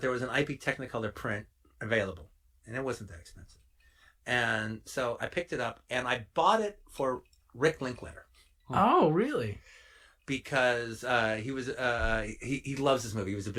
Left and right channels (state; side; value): identical; both; correlation 1.00